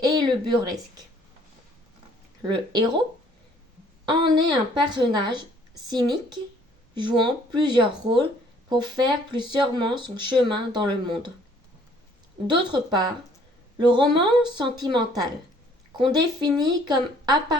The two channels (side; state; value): both; normal; correlation 0.60